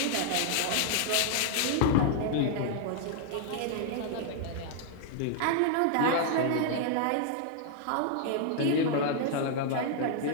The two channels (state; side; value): different; both; correlation 0.00